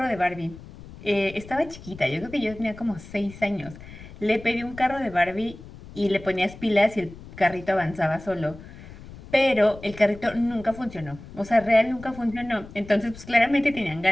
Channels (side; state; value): left; noise; rumble, 17 dB below the sound